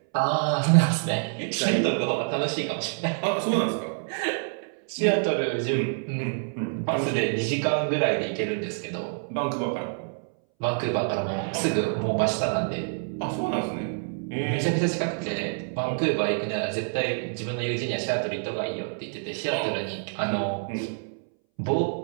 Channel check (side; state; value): left; silent; 60 dB below the other